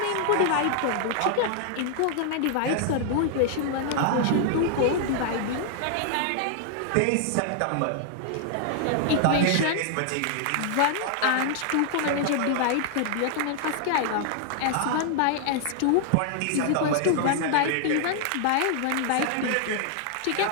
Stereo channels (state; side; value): different; both; correlation 0.00